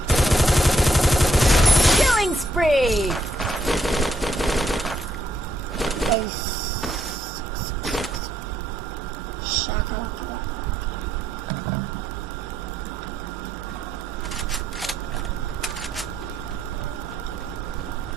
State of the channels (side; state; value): both; normal; correlation 0.74